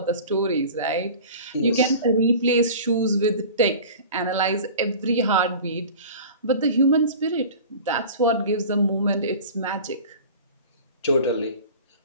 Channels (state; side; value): inverted; both; correlation -0.39